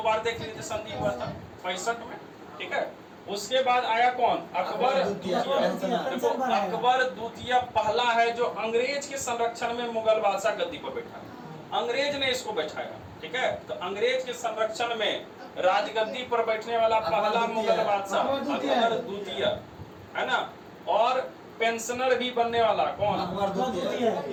बार देख लीजिए, संधि हुआ था 65 में, ठीक है। उसके बाद आया कौन? अकबर द्वितीय। देखो अकबर द्वितीय पहला है जो अंग्रेज के संरक्षण में मुगल बादशाह गद्दी पर बैठा, अंग्रेज ने इसको बैठाया, ठीक है। तो अंग्रेज के संरक्षण में राजगद्दी पर बैठने वाला पहला मुगल बादशाह अकबर द्वितीय, है ना। और पेंशनर भी बनने वाला कौन?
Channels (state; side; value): identical; both; correlation 1.00